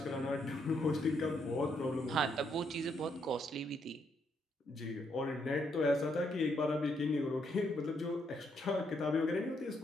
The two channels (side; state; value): both; normal; correlation 0.75